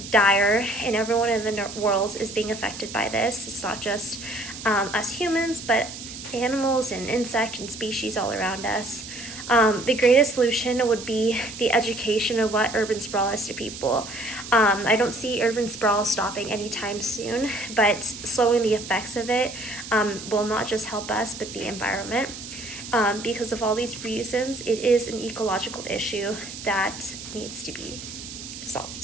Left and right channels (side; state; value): right; noise; hiss, 11 dB below the sound